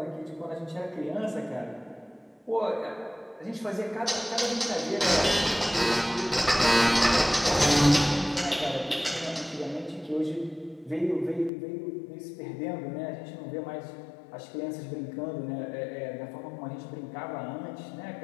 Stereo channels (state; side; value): drops out; right; at 11.5 s